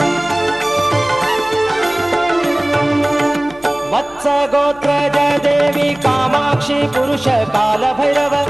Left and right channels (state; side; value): noise; left; hum, 24 dB below the sound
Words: गोत्रज देवी कामाक्षी पुरुष काल भैरव